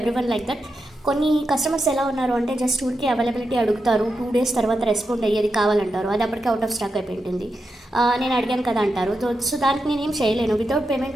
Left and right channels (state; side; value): normal; both; correlation 0.87